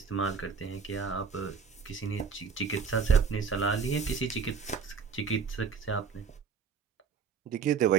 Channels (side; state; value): left; quieter; 6.0 dB